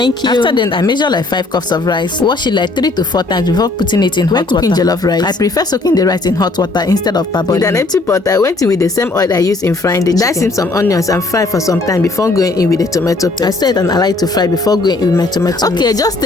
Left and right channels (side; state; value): right; quieter; 3.2 dB